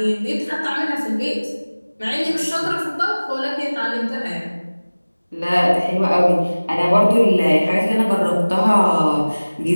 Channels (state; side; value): inverted; both; correlation -1.00